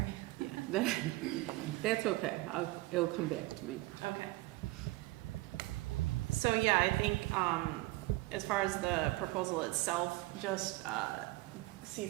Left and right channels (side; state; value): left; quieter; 19.8 dB